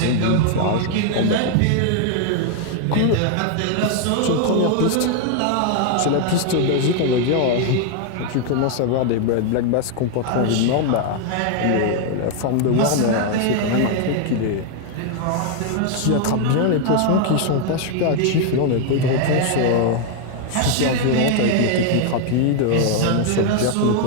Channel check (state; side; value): different; both; correlation 0.00